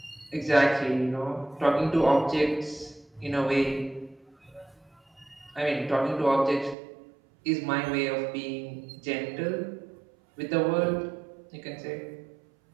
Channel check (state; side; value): drops out; left; at 6.8 s